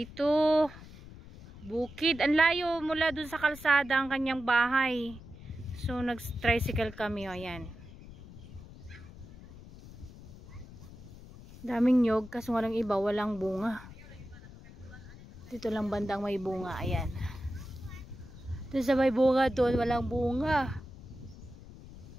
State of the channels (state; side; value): noise; left; rumble, 17 dB below the sound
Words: bukid. Ang layo mula dun sa kalsada ang kanyang bahay. So nag-tricycle kami, oh. Ayan. Daming nyog, kaso walang iba, walang bunga. Dito lang bandang may bunga, ayan. Doon sa may bunga doon, walang bunga.